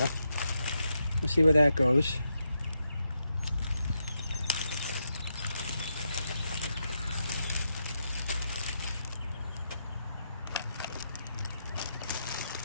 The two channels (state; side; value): inverted; both; correlation -0.83